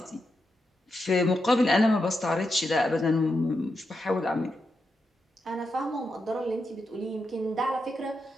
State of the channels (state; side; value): normal; both; correlation 0.86